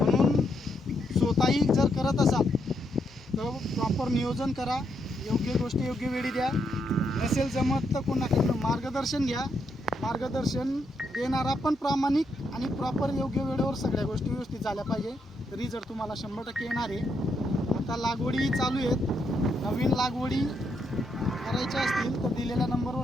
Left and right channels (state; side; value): normal; both; correlation 0.78